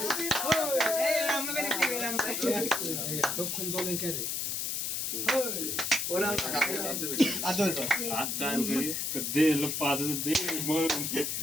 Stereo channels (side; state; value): left; noise; hiss, 1 dB below the sound